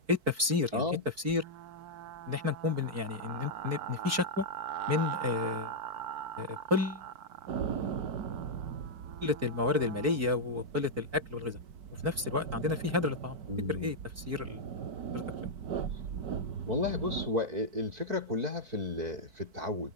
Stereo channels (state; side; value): late; left; 4.6 ms